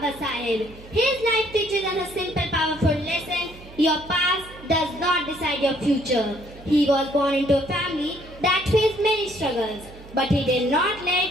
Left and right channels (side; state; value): right; noise; hum, 19 dB below the sound